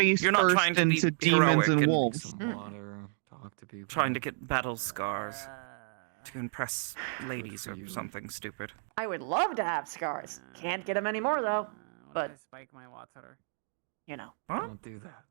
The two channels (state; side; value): silent; left; 57 dB below the other